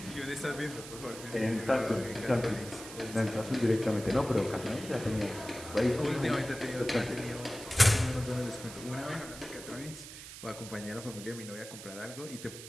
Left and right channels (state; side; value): noise; right; hiss, 13 dB below the sound